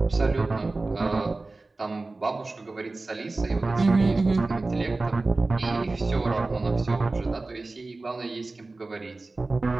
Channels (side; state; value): left; quieter; 3.3 dB